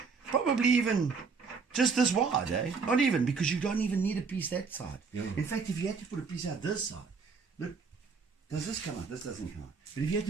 probably even just this wide, eh? Not even, because you don't even need a piece that side. Yeah. In fact, if you had to put a piece out this side, look, does this come out? This doesn't come out. But if you had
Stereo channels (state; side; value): quieter; left; 5.1 dB